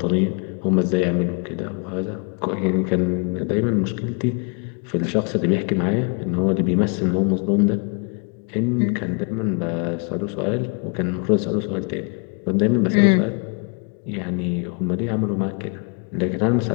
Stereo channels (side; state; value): right; quieter; 37.7 dB